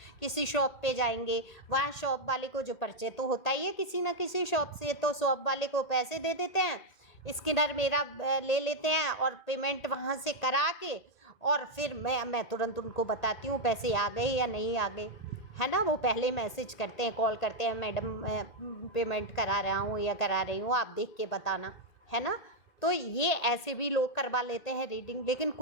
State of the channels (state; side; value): late; right; 1.8 ms